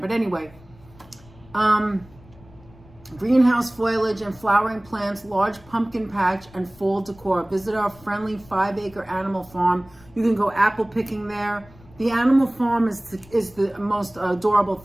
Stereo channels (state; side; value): noise; left; rumble, 24 dB below the sound